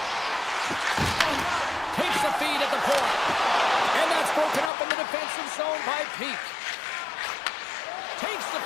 Takes the feed at the point. And that's broken up in the defensive zone by Peak. Takes the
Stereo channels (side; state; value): right; drops out; at 4.7 s